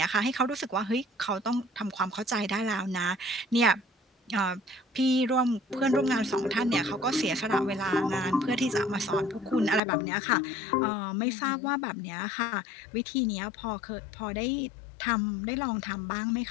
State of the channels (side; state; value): right; drops out; at 9.8 s